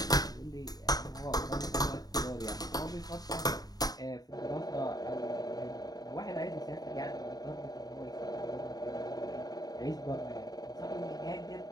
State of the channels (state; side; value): late; right; 0.18 ms